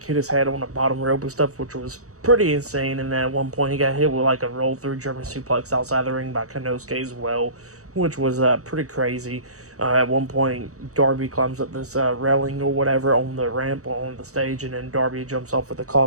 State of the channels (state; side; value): late; left; 0.65 ms